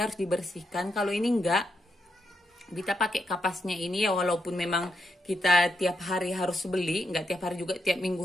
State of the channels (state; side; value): normal; both; correlation 0.82